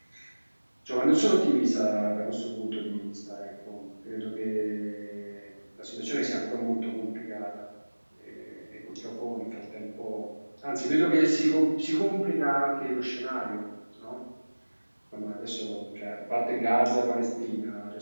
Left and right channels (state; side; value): inverted; both; correlation -1.00